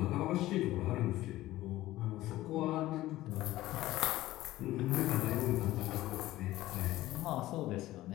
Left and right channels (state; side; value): quieter; right; 16.1 dB